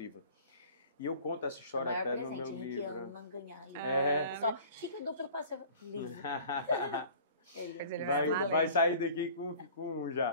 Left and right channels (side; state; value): both; inverted; correlation -0.46